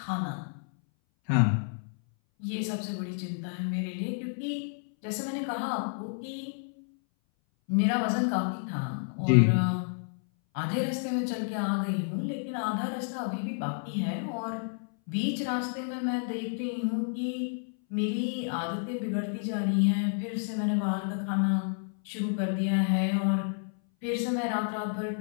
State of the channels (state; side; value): silent; right; 58 dB below the other